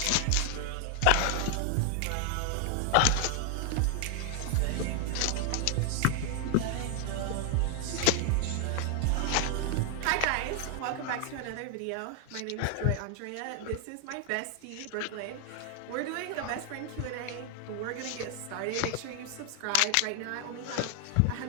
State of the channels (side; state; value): both; different; correlation 0.00